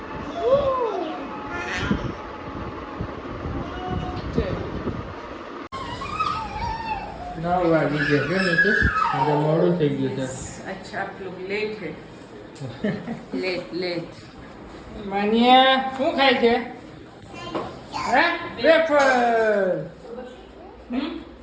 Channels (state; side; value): identical; both; correlation 1.00